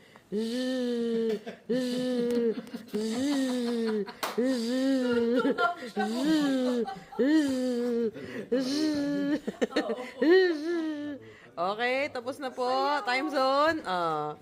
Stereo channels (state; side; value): identical; both; correlation 1.00